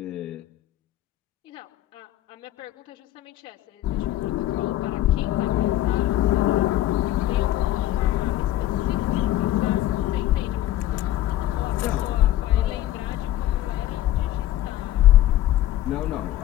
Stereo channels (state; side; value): quieter; right; 13.8 dB